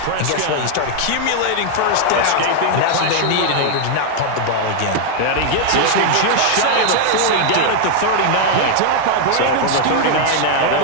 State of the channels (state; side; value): different; both; correlation 0.00